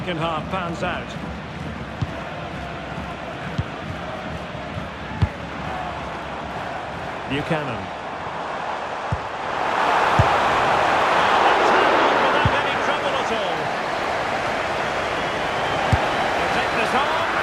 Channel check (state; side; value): identical; both; correlation 1.00